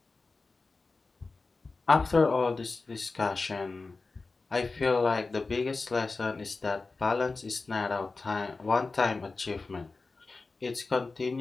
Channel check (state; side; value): quieter; right; 3.8 dB